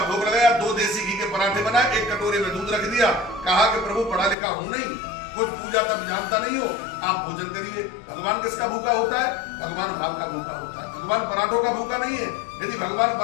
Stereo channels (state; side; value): drops out; right; at 4.4 s